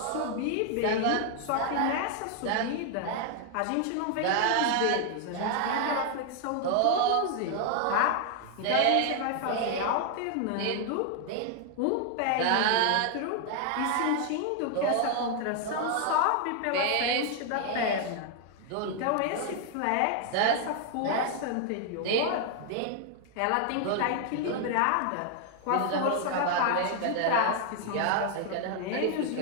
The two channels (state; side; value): different; both; correlation 0.00